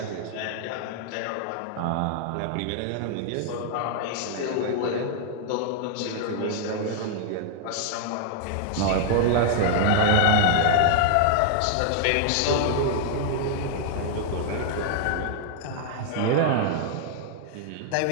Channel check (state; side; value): different; both; correlation -0.01